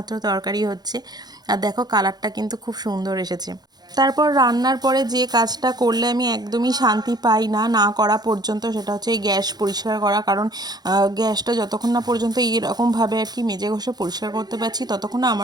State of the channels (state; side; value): late; left; 0.19 ms